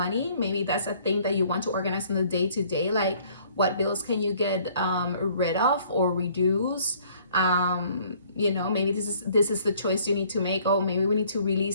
Maybe that's a thing that you want to organize in the day-to-day, like what bills can you get rid of or reduce. You know, maybe this is the choice you need to make. Oh, maybe we need to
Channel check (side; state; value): both; inverted; correlation -0.59